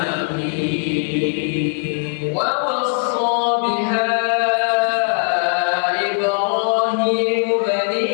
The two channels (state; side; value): silent; right; 58 dB below the other